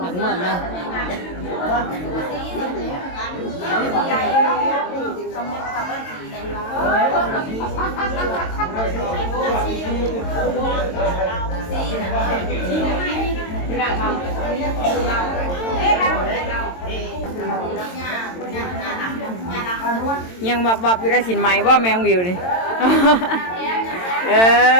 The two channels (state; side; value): late; right; 22 ms